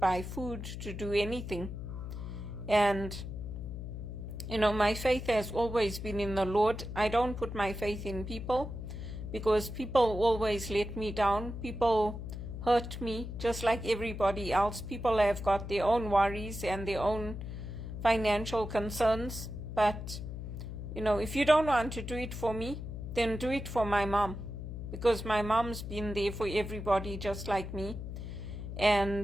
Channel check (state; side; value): noise; left; hum, 7 dB below the sound